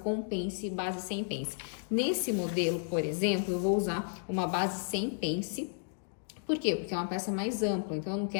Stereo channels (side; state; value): right; silent; digital silence